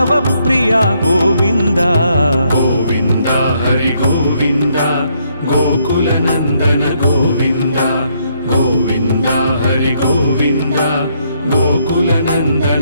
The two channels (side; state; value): both; inverted; correlation -0.72